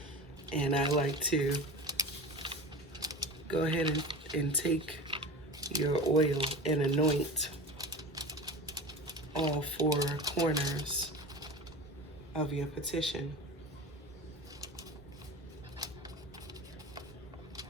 And I like to go ahead and take your oil and anoint all four corners of your petition.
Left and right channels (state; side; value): normal; both; correlation 0.32